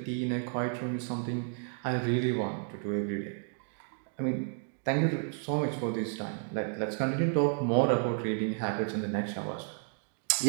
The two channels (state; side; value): silent; left; 57 dB below the other